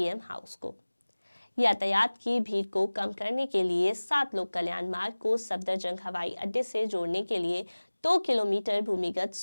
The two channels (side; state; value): both; inverted; correlation -1.00